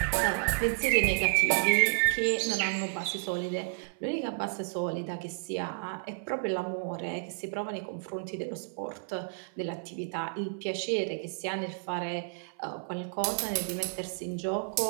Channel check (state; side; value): silent; left; 57 dB below the other